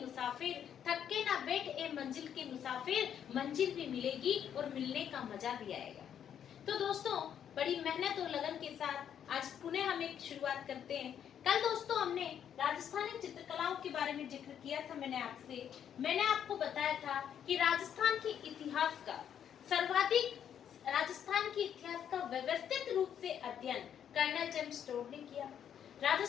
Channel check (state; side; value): quieter; right; 9.0 dB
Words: मुसाफिर, थक के ना बैठ ए मंजिल के मुसाफिर, मंजिल भी मिलेगी और मिलने का मजा भी आएगा। तो दोस्तों, बड़ी मेहनत और लगन के साथ आज पुनः हम एक शुरुआत करते हैं। कल दोस्तों हमने राजस्थानी चित्रकलाओं के बारे में जिक्र किया था। मैंने आपको बताया था कि राजस्थान के इतिहास का सर्वाधिक राजस्थान के इतिहास का व्यवस्थित रूप से अध्ययन कर्नल जेम्स टोड ने किया।